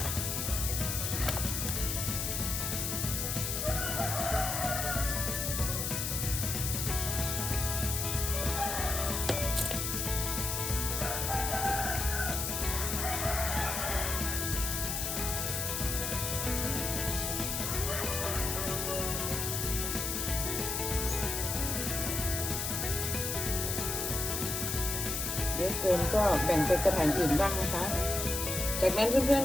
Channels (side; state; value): left; noise; hiss, 1 dB below the sound